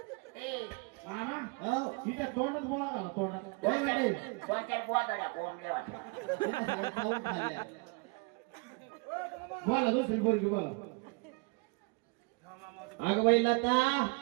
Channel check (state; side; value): quieter; left; 30.0 dB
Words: ए मामा हो तिच्या तोंडात बोळा झाला तोंडात. काय म्हणते? कोणत्या गोदाड्या कोंबड्या होत्या. खाऊन खाल्ल्या. बोला दुसरी पोरगी बोला. अगं बाई लता.